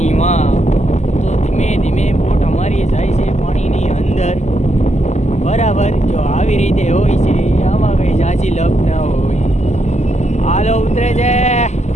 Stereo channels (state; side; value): late; right; 0.33 ms